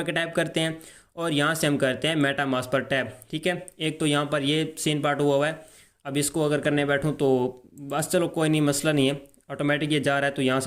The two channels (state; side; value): identical; both; correlation 1.00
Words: टैप करते हैं और यहाँ से हम करते हैं मेटामास्क पर टैप। ठीक है, एक तो यहाँ पर ये सीन पार्ट हुआ है। अब इसको अगर करने बैठूँ तो बस चलो कोई नहीं, मसला नहीं है, ऑटोमेटिक ये जा रहा है। तो यहाँ